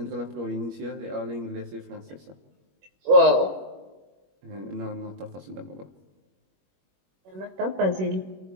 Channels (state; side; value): late; left; 21 ms